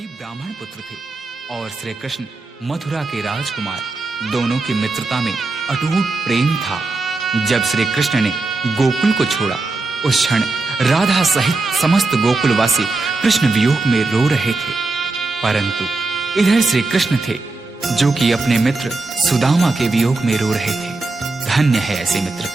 ब्राह्मण पुत्र थे और श्री कृष्ण मथुरा के राजकुमार। दोनों की मित्रता में अटूट प्रेम था। जब श्री कृष्ण ने गोकुल को छोड़ा, उस क्षण राधा सहित समस्त गोकुलवासी कृष्ण वियोग में रो रहे थे। परंतु इधर श्री कृष्ण थे जो कि अपने मित्र सुदामा के वियोग में रो रहे थे। धन्य है ऐसी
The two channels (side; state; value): left; quieter; 3.4 dB